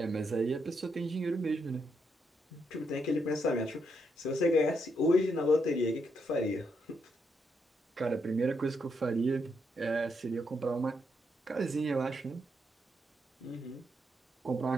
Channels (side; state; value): both; normal; correlation 0.79